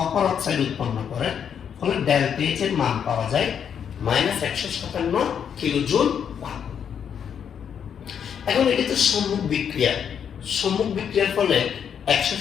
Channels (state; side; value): quieter; right; 8.0 dB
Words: অক্সাইড উৎপন্ন করে, ফলে ডেল্টা এইচ এর মান পাওয়া যায় -157 কিলোজুল। এখন এটি তো সম্মুখ বিক্রিয়া, সম্মুখ বিক্রিয়ার ফলে